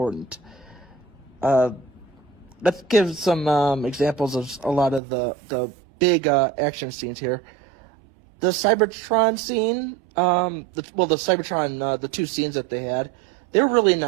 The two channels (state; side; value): drops out; left; at 5.0 s